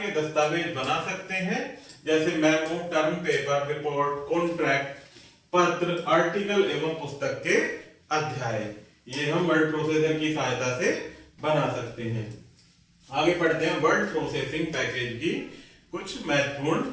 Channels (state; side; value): identical; both; correlation 1.00